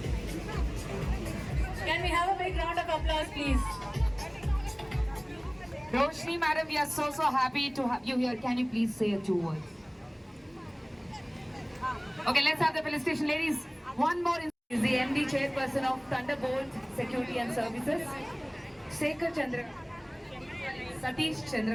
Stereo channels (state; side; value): identical; both; correlation 1.00